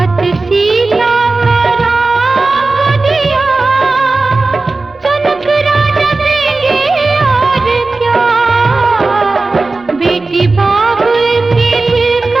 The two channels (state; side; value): quieter; left; 3.5 dB